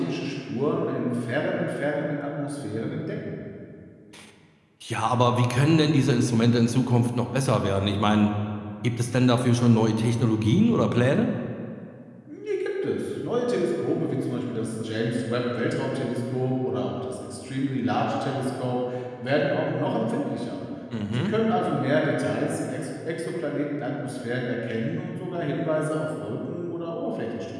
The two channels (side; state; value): both; identical; correlation 1.00